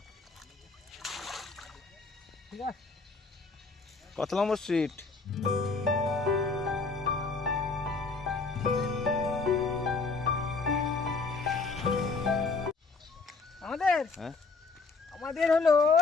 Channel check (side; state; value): right; quieter; 4.1 dB